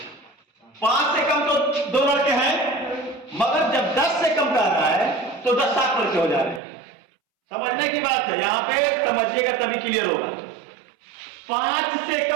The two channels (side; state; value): left; drops out; at 6.6 s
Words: 5 से कम तो 2 लड़के हैं, मगर जब 10 से कम कर रहा है तो 10 7 लड़के हो जा रहे हैं। समझने की बात है, यहां पे समझिएगा तभी क्लियर होगा। 5 से